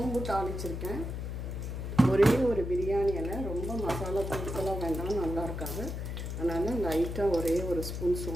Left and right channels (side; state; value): left; noise; hum, 5 dB below the sound